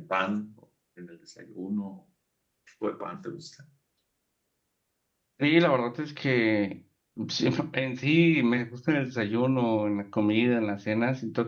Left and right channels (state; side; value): identical; both; correlation 1.00